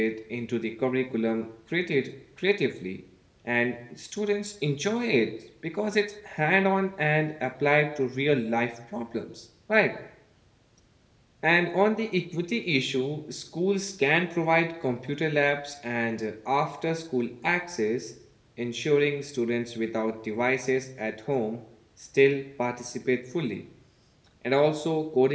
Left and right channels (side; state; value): both; identical; correlation 1.00